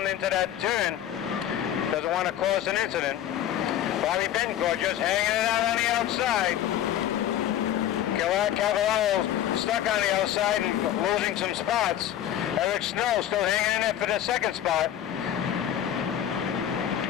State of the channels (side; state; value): right; quieter; 11.3 dB